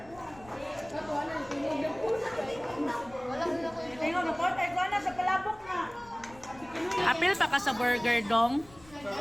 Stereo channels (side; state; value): left; noise; rumble, 23 dB below the sound